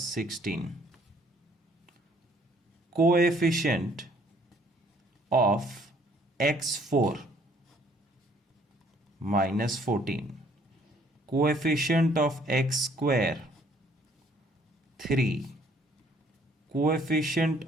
16. Coefficient of x4 minus 14. Coefficient of x square 3. Coefficient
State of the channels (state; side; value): normal; both; correlation 0.62